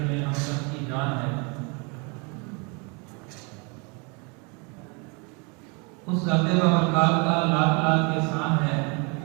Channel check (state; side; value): quieter; left; 32.1 dB